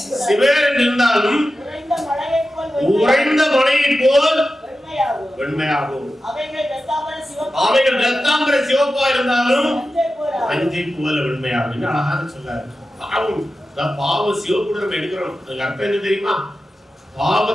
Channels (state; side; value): normal; both; correlation 0.93